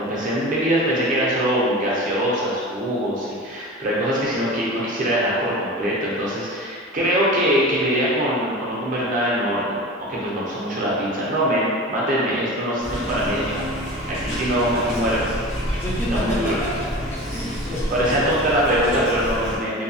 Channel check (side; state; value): both; normal; correlation 0.33